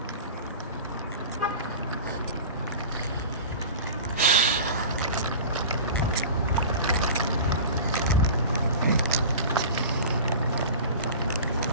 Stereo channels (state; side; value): inverted; both; correlation -0.36